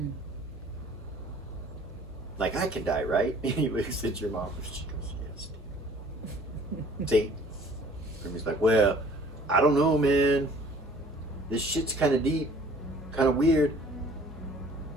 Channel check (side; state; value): both; normal; correlation 0.53